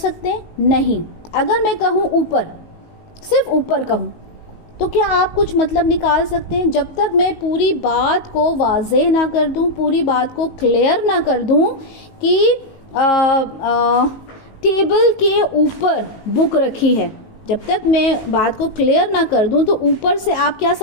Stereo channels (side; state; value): right; late; 19 ms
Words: हैं? नहीं। अगर मैं कहूं ऊपर, सिर्फ ऊपर कहूं, तो क्या आप कुछ मतलब निकाल सकते हैं? जब तक मैं पूरी बात को वाज़ेह ना कर दूं, पूरी बात को क्लियर ना कर दूं कि टेबल के ऊपर बुक रखी है, जब तक मैं बात को क्लियर ना कर दूं तो ऊपर से आप क्या